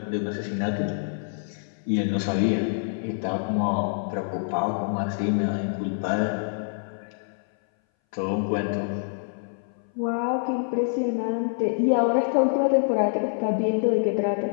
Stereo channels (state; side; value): silent; right; 59 dB below the other